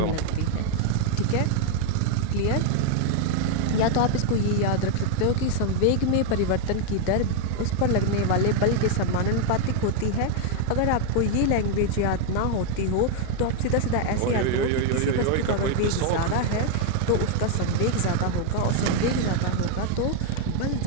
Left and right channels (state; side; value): different; both; correlation 0.00